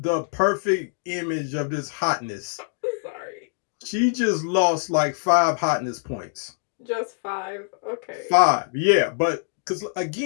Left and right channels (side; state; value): right; silent; digital silence